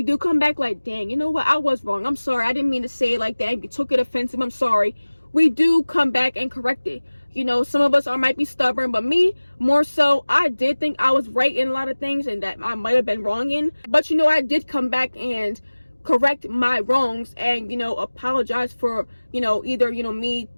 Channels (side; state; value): both; inverted; correlation -1.00